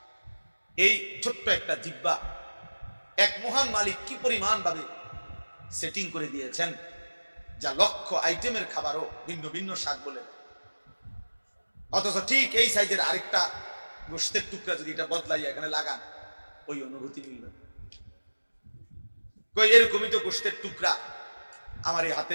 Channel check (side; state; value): both; inverted; correlation -1.00